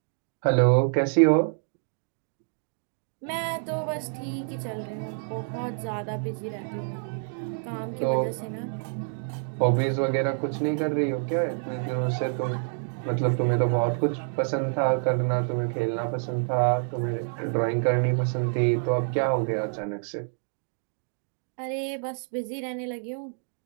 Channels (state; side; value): silent; left; digital silence